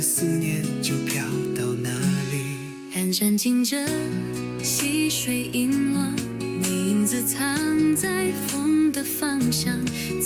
思念就飘到哪里。寒山静着，溪水阴落，你影子藏在风的方向，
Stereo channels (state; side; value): identical; both; correlation 1.00